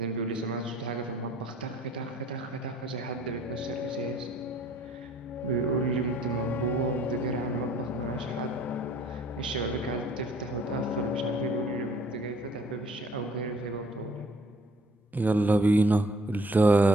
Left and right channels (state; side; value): normal; both; correlation 0.58